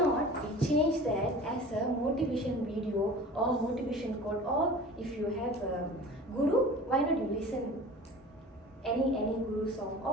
we change that as a motivation video or motivation quote, or if you have a guru, why not you listen any guru song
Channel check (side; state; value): both; normal; correlation 0.40